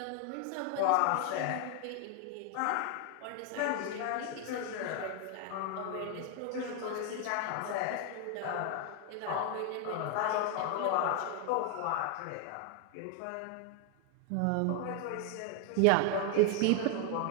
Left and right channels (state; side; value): different; both; correlation 0.01